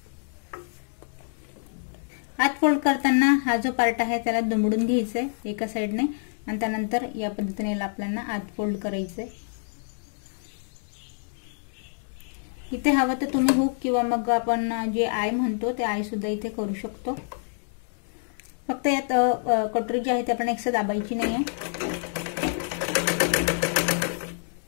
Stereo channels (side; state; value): right; silent; 60 dB below the other